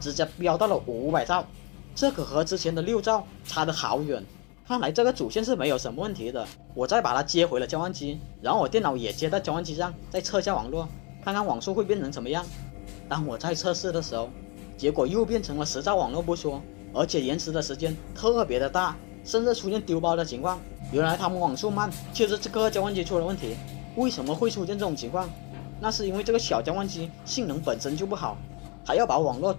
接飙到了500兆，这可和之前的6兆差得好远。看来这个主线是没有什么问题的。我再把它接回了交换机，然后我电脑也接到交换机上，再测下网络，看看网速会变成什么样。当我在测试的时候，结果又变成了10兆网络不说，而且延迟的时间特别的大，甚至出现丢包的情况。原来他们网速慢就是这个交换机出了问题。为什么会出现这种情况？那是因为这个小交换机性能本身就不好，还要把网络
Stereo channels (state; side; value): quieter; right; 31.0 dB